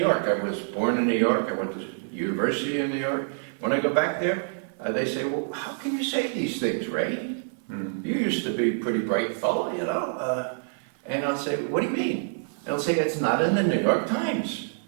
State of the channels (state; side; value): silent; left; 59 dB below the other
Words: I was born in New York, I went to university in New York. When I go back there, they say, well, how can you say these things, Ray? Mm-hmm. You used to be a pretty bright fellow, you know. And I'll say, what do you mean? And they'll say, it's not in the New York Times.